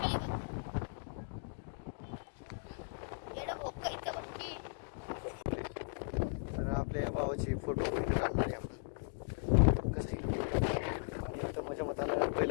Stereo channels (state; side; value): silent; right; digital silence